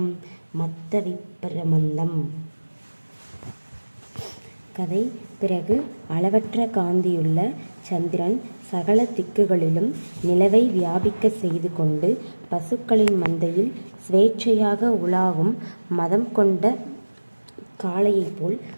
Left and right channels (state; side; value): inverted; both; correlation -1.00